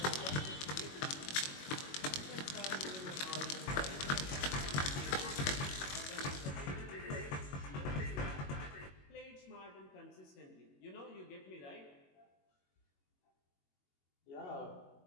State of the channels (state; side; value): late; right; 22 ms